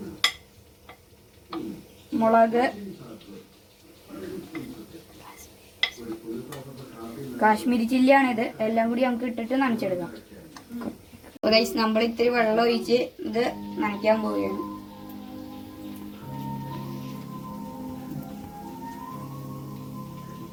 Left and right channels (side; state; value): both; identical; correlation 1.00